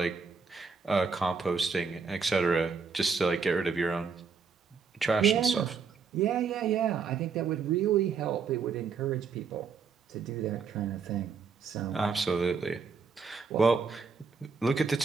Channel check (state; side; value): quieter; left; 5.4 dB